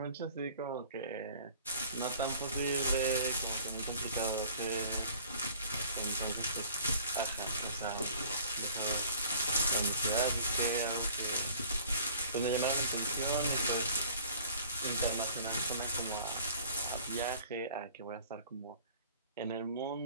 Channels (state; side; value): inverted; both; correlation -0.49